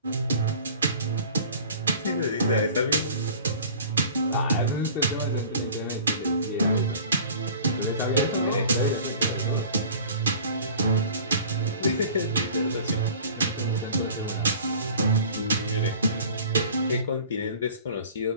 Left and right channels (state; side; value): inverted; both; correlation -0.45